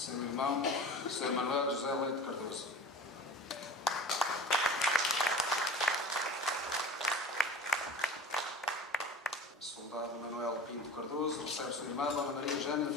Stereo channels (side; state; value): both; normal; correlation 0.37